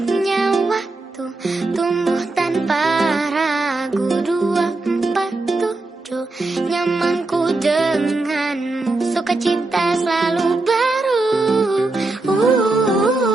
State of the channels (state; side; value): quieter; left; 3.2 dB